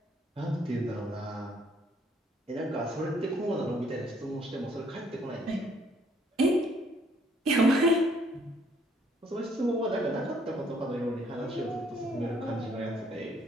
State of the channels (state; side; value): normal; both; correlation 0.65